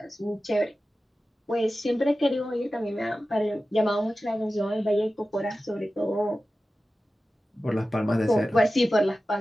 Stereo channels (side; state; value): both; normal; correlation 0.94